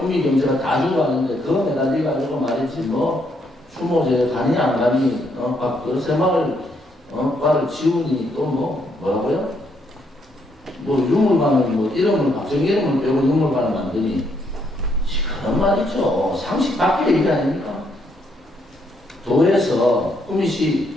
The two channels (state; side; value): normal; both; correlation 0.74